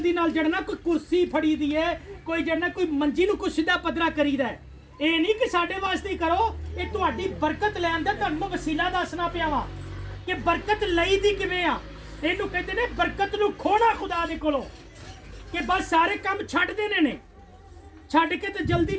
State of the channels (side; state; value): both; identical; correlation 1.00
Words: ਨਾਲ ਜੜਨਾ ਕੋਈ ਕੁਰਸੀ ਫੜੀ ਦੀ ਹੈ, ਕੋਈ ਜੜਨਾ ਕੋਈ ਮੰਜੀ ਨੂੰ ਕੁਛ ਦਾ ਪੱਧਰਾ ਕਰੀਦਾ ਹੈ। ਇਹ ਨਹੀਂ ਕਿ ਸਾਡੇ ਵਾਸਤੇ ਹੀ ਕਰੋ, ਇਹ ਤੁਹਾਡੀ ਬਰਕਤ ਲੈਣ ਦਾ ਤੁਹਾਨੂੰ ਵਸੀਲਾ ਦੱਸਣਾ ਪਿਆ ਵਾ ਕਿ ਬਰਕਤ ਲਈ ਦੀ ਕਿਵੇਂ ਆ। ਇਹਨੂੰ ਕਹਿੰਦੇ ਨੇ ਬਰਕਤ ਨੂੰ ਖੋਣਾ ਖੁਦਾ ਦੇ ਕੋਲੋਂ, ਕਿ ਬਸ ਸਾਰੇ ਕੰਮ ਛੱਡ ਦੇਣੇ ਨੇ, ਛੱਡ ਕੇ ਤੇ ਜਲਦੀ